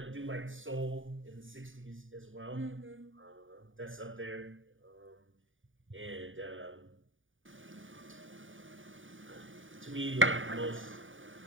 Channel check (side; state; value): left; late; 0.57 ms